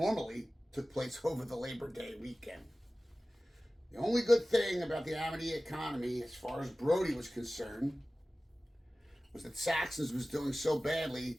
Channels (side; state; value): both; normal; correlation 0.97